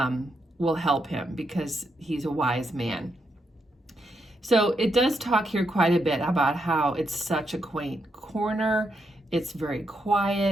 will help him because he's a wise man. So it does talk here quite a bit about how it's such a quaint corner. It's very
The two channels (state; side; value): normal; both; correlation 0.81